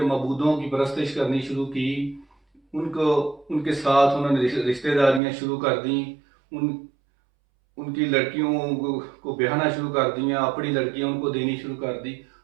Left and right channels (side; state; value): left; drops out; at 5.2 s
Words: معبودوں کی پرستش کرنی شروع کی، ان کے ساتھ انہوں نے رشتہ داریاں شروع کر دیں، ان کی لڑکیوں کو بیاہنا شروع کر دیا، اپنی لڑکیاں ان کو دینی شروع کر دی،